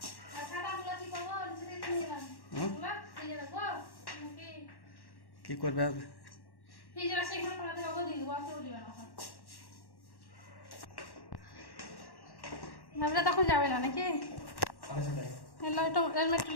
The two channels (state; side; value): late; right; 1.1 ms